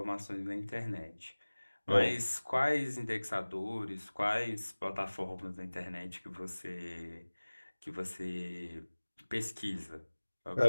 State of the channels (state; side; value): inverted; both; correlation -1.00